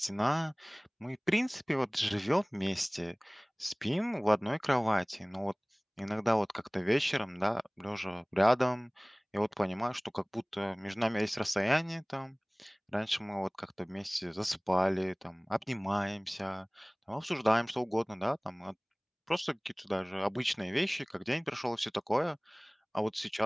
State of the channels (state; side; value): identical; both; correlation 1.00